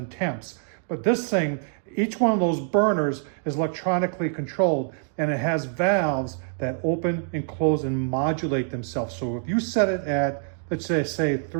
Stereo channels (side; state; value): left; silent; digital silence